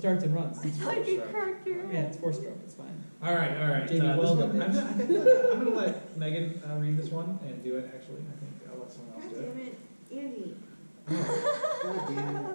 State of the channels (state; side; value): inverted; both; correlation -1.00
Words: and runs. I thought you cracked your Yeah, head. it's 4-stroke. It's fine. All right. Jamie, this well one, done, I'm gonna let Megan read this one and do it. Actually, I think I'll let someone else God do it. damn it, Andy. God damn